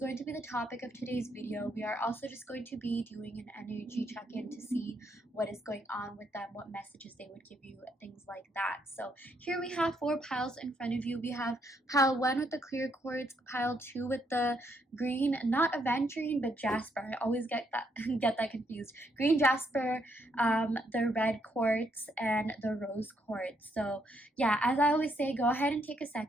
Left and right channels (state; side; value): normal; both; correlation 0.74